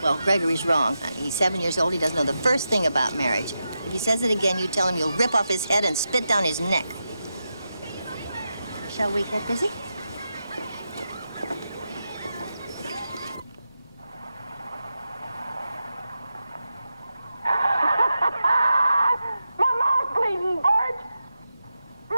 Well, Gregory's wrong, honey. He's 7 years old. He doesn't know the first thing about marriage. If he says it again, you tell him you'll rip off his head and spit down his neck. Shall we get busy? My mouth's bleeding, Bert!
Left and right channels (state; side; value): inverted; both; correlation -0.89